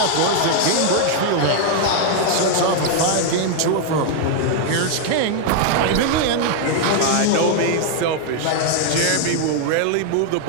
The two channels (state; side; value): different; both; correlation 0.00